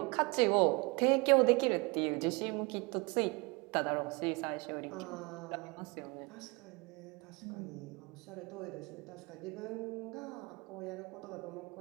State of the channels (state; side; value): quieter; left; 27.7 dB